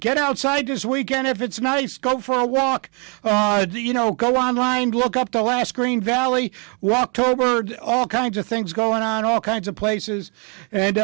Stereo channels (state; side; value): quieter; left; 34.9 dB